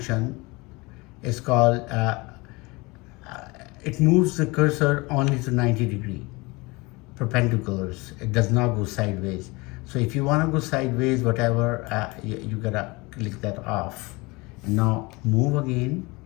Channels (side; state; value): right; quieter; 24.9 dB